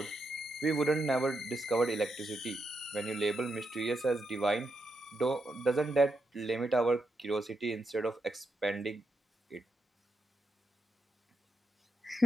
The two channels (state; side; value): normal; both; correlation 0.83